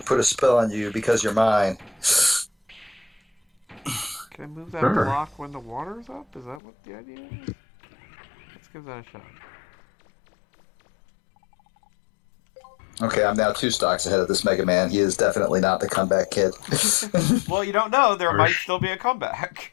a spell on you because you're mine. Can I move that Sure. block when the water's up? Is that what the idea is? Let's give that a shot. Okay, I'm now 2 stocks ahead of this Mega Man. He is definitely not the comeback kid. Well, you don't know. There might Harsh. still be a comeback.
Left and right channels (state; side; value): drops out; right; at 6.6 s